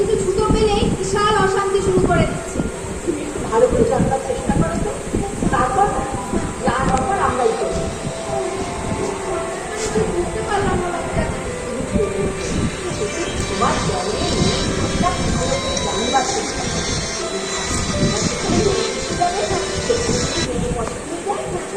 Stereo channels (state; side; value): identical; both; correlation 1.00